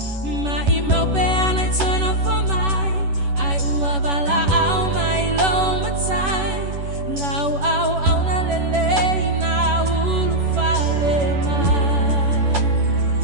ma i mau pe ana i toina for mai ai ua bala au mai lo matai lau au na lele na ulu fale mai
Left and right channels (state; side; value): late; left; 11 ms